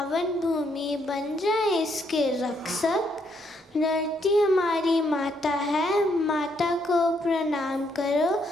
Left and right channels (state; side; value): normal; both; correlation 0.73